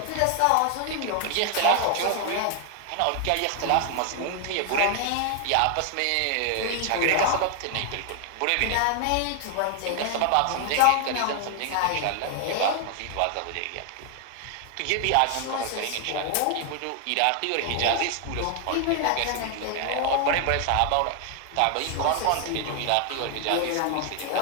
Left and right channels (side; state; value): both; different; correlation 0.00